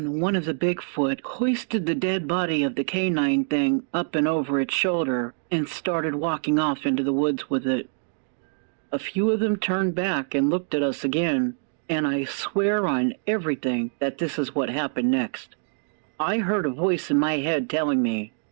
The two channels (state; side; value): silent; left; digital silence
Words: one of the Bigfoot hoisted the dead body of the canine thing up and over its shoulder and started walking off into the woods with it. A few of them turned back and looked at us again, and I swear on everything that this is what happened next. I heard a voice in my head telling me,